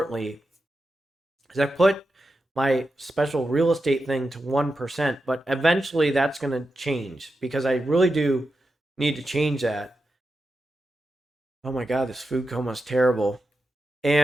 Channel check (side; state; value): both; normal; correlation 0.89